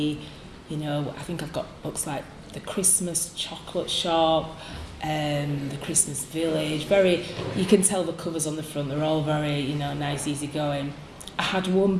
I think I've got books like The Christmas Chocolate Shop, The Christmas Village. You can tell the covers on the front, they're all very, nice, easy going. I had one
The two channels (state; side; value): identical; both; correlation 1.00